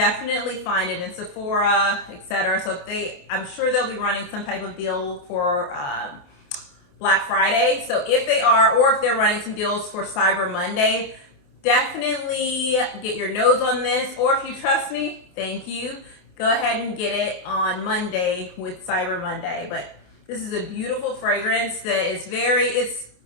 find it in Sephora, etc. So if I'm sure they'll be running some type of deal for Black Friday. So if they are, or if they're running some deals for Cyber Monday, definitely get your nose on this. Or if you trust me, thank you. Go ahead and get it on Monday with Cyber Monday. But this is a beautiful fragrance that is it's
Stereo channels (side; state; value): right; late; 28 ms